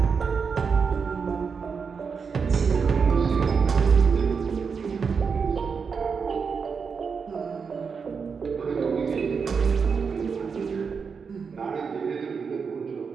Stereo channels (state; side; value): quieter; left; 5.7 dB